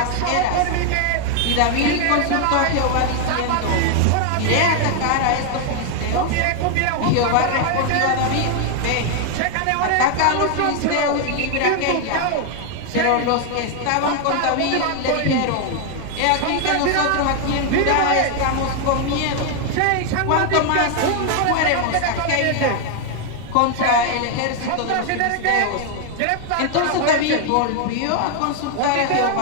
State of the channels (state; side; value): different; both; correlation 0.00